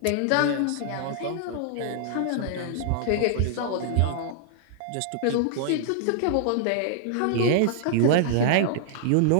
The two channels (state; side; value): different; both; correlation -0.01